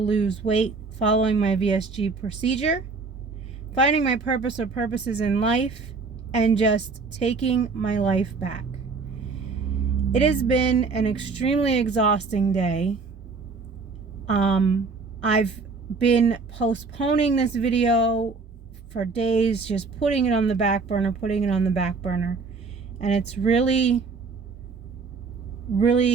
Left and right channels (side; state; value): left; quieter; 4.4 dB